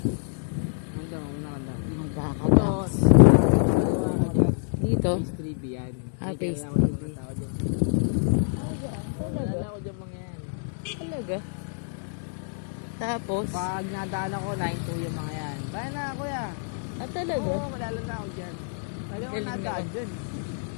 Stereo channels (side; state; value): right; silent; 60 dB below the other